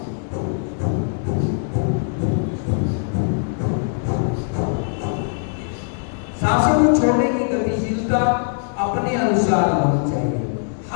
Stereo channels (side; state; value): right; silent; 65 dB below the other